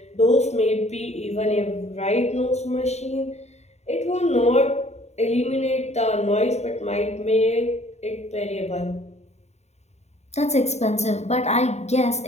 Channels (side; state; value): right; late; 0.32 ms